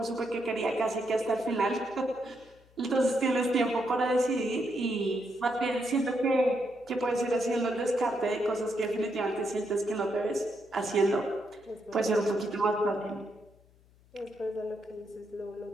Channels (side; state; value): left; noise; hum, 29 dB below the sound